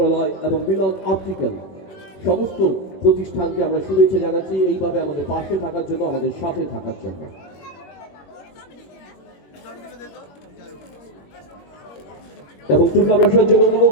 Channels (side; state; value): right; late; 21 ms